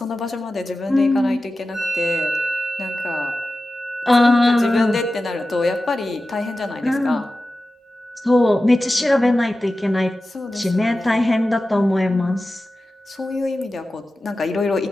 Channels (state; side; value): normal; both; correlation 0.94